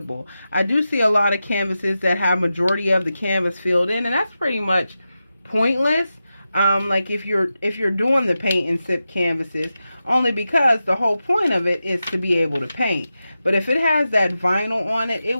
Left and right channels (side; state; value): both; inverted; correlation -0.91